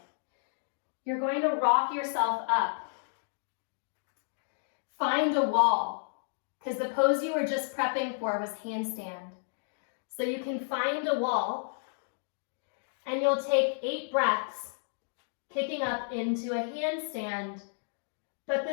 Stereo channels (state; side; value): silent; right; digital silence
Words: You're going to rock yourself up. Find a wall, because the pose you were just prepping for was handstand. So you can find a wall, and you'll take 8 breaths, kicking up into a handstand, but